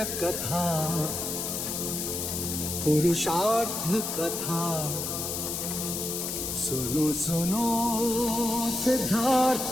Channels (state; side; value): noise; left; hiss, 3 dB below the sound